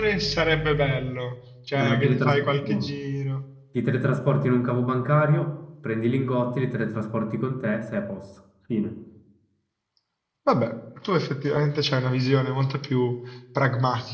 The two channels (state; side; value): identical; both; correlation 1.00